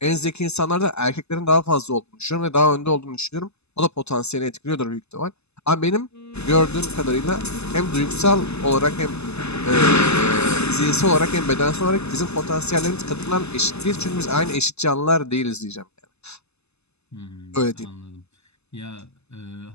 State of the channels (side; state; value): right; late; 0.80 ms